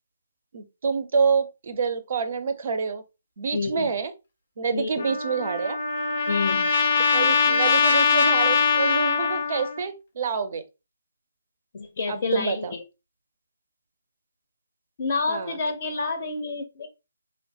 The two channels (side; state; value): both; inverted; correlation -0.70